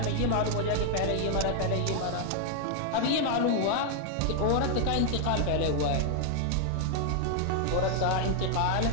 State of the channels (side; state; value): both; different; correlation 0.00